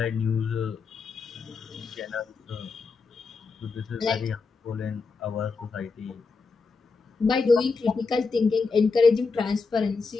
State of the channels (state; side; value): quieter; right; 4.5 dB